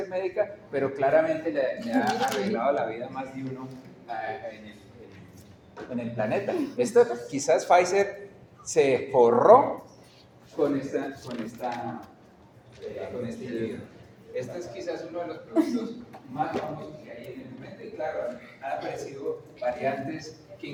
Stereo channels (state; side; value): identical; both; correlation 1.00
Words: médica, pero claramente le ha arreglado la vida a más de uno en el planeta. Esto quizás Pfizer se forró con este individuo. Este es quizás uno de los productos más famosos que hay en el momento, y claro, han aparecido variantes que